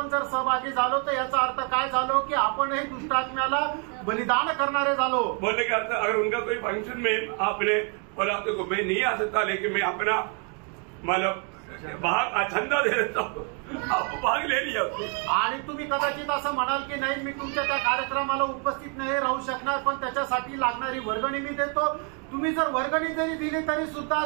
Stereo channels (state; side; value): quieter; left; 38.6 dB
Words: जर सहभागी झालो तर याचा अर्थ काय झालो की आपणही दुष्टात्म्याला बलिदान करणारे झालो। बोलने का अर्थ अगर उनका कोई फंक्शन में आपने बोला तो मैं नहीं आ सकता लेकिन मैं अपना मतलब भाग चंदा दे देता हूँ, आप भाग ले लिया। आणि तुम्ही कदाचित असं म्हणाल की नाही मी तुमच्या त्या कार्यक्रमाला उपस्थित नाही राहू शकणार पण त्याच्यासाठी लागणारी वर्गणी मी देतो। तुम्ही जर वर्गणी जरी दिली तरी सुद्धा